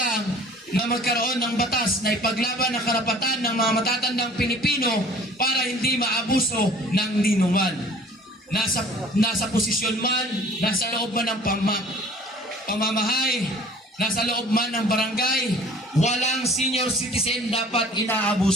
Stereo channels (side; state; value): both; normal; correlation 0.49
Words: na magkaroon ng batas na ipaglaban ang karapatan ng mga matatandang Pilipino para hindi maabuso ng ninuman. Nasa posisyon man, nasa loob man ng pamamahay, nasa loob man ng barangay, walang senior citizen dapat